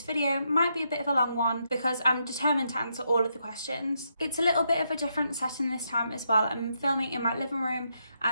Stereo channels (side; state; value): both; inverted; correlation -0.79